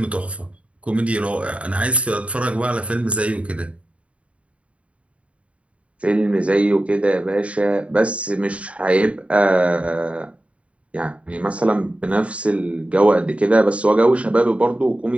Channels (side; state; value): left; late; 0.063 ms